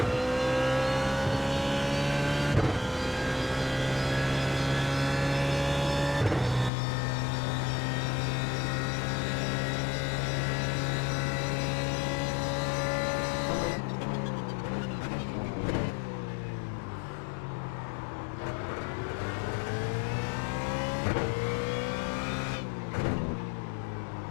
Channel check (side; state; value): right; drops out; at 6.7 s